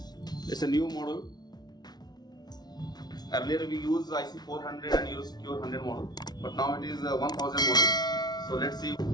It's a new model. Earlier we used IC 400 and Eurosecure 100 model, but now it is a 1000 model. So let's see.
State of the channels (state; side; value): late; right; 0.19 ms